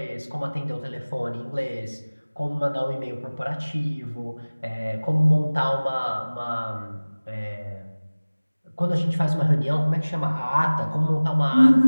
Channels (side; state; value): both; inverted; correlation -1.00